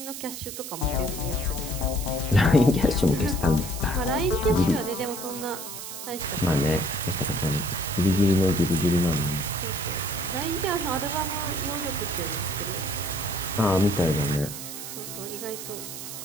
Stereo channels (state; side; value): noise; right; hiss, 9 dB below the sound